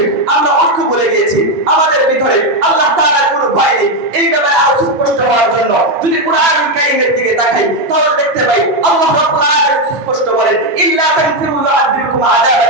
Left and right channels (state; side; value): normal; both; correlation 0.07